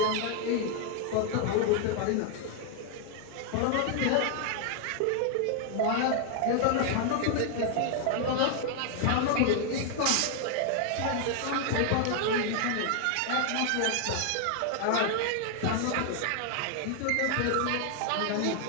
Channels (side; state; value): both; different; correlation 0.00